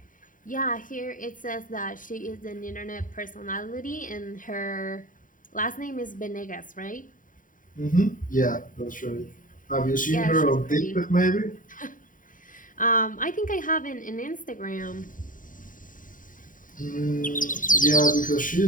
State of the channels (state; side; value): late; right; 0.39 ms